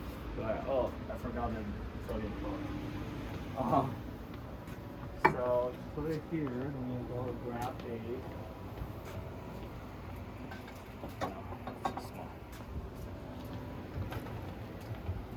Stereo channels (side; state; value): both; identical; correlation 1.00